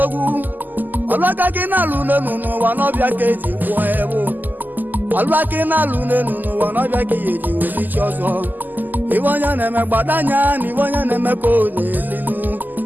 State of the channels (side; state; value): left; late; 0.086 ms